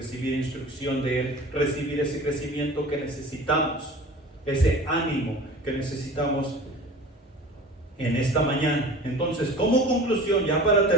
instrucción de Él, recibir ese crecimiento que necesitamos, ese ánimo que necesitamos en esta mañana. Entonces, como conclusión, ya para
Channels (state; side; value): normal; both; correlation 0.40